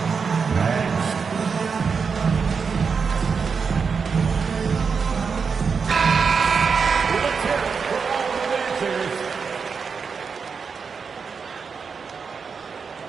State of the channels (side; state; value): left; quieter; 5.6 dB